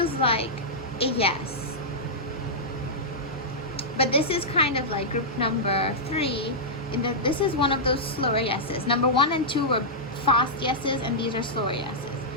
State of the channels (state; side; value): normal; both; correlation -0.11